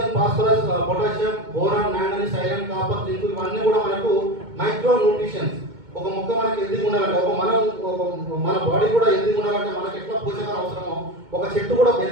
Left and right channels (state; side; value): late; left; 2.2 ms